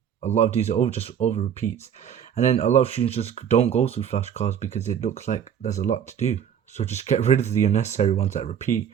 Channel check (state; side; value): quieter; left; 8.6 dB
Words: a lot of these are just over repeats. And then a lot of students just don't go through flashcards because it looks like there's a lot to do. So just get rid of the unnecessary ones that repeat,